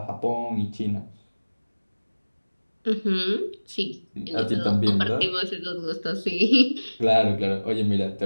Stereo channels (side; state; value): both; inverted; correlation -1.00